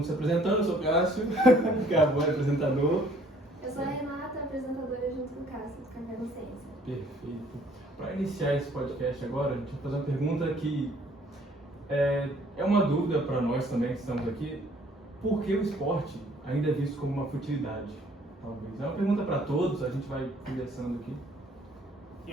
se apresentando, eu sou o Cássio, que é agora apresentador. Eu sou a Renata, apresentadora junto com o Cássio, do Café Consciência. Perfeito. Para iniciar esse podcast agora, a gente vai fazer uma pergunta que é uma dúvida para nós também que estamos aqui. Por que o esporte ainda é visto como uma futilidade? Talvez. É uma pergunta para todos, a gente vai conversando aqui.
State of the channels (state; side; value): normal; both; correlation 0.60